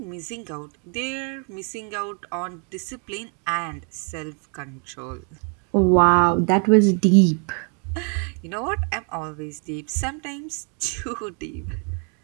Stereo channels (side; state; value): left; quieter; 39.4 dB